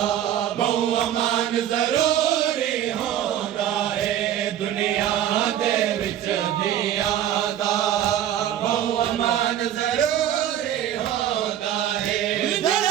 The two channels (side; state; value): left; quieter; 11.1 dB